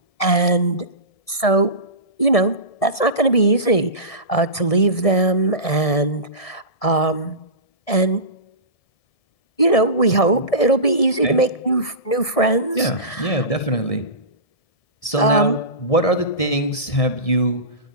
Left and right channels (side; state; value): right; late; 1.7 ms